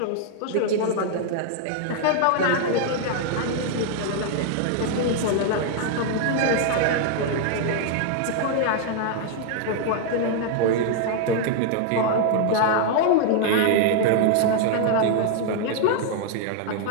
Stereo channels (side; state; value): both; different; correlation 0.00